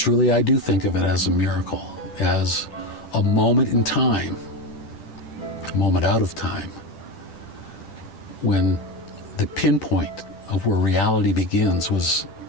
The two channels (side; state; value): right; late; 10 ms